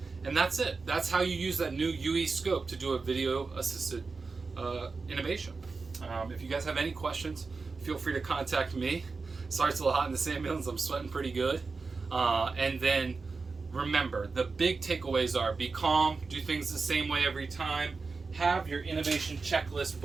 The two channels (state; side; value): quieter; left; 4.3 dB